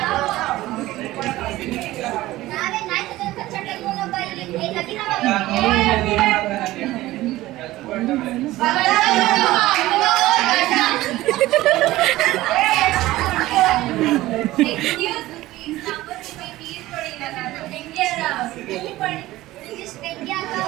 ನಾವೇ ನಾಯಿ ಜೊತೆ ಕಚ್ಚಡ ಇಲ್ವೊಬ್ಬ ಇಲ್ಲಿ ನದಿ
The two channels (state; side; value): quieter; left; 17.0 dB